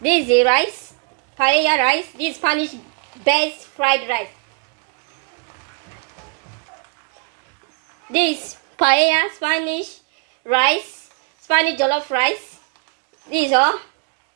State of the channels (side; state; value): left; quieter; 36.4 dB